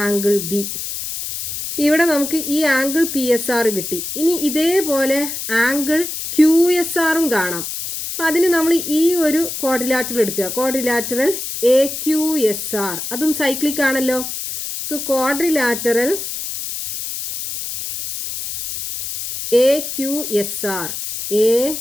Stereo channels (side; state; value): left; noise; hiss, 6 dB below the sound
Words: B. ഇവിടെ നമുക്ക് ഈ angle PSR കിട്ടി. ഇനി ഇതേപോലെ ആംഗിൾ QSRും കാണാം. അപ്പോൾ അതിന് നമ്മൾ ഈ ഒരു ക്വാഡ്രിലാറ്ററൽ എടുക്കുക. ക്വാഡ്രിലാറ്ററൽ AQSR, അതും സൈക്ലിക് ആണല്ലോ. So quadrilateral AQSR